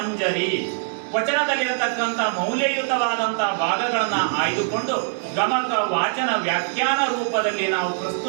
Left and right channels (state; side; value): silent; left; digital silence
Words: ವಚನದಲ್ಲಿರತಕ್ಕಂಥ ಮೌಲ್ಯಯುತವಾದಂಥ ಭಾಗಗಳನ್ನು ಆಯ್ದುಕೊಂಡು ಗಮಕ ವಾಚನ ವ್ಯಾಖ್ಯಾನ ರೂಪದಲ್ಲಿ ನಾವು